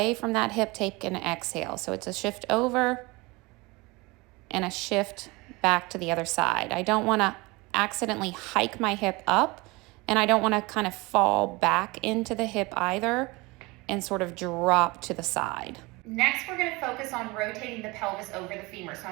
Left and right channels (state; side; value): quieter; left; 23.9 dB